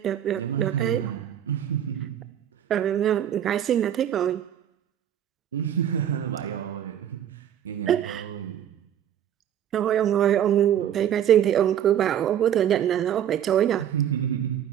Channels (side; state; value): left; quieter; 10.1 dB